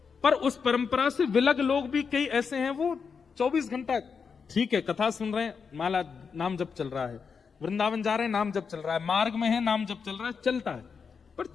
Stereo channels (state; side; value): quieter; right; 5.8 dB